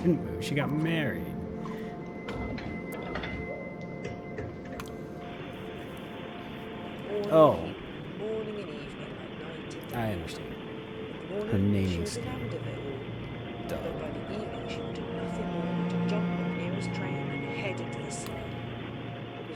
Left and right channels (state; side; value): identical; both; correlation 1.00